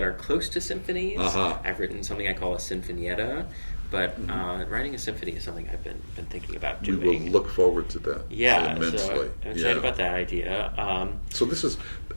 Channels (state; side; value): inverted; both; correlation -1.00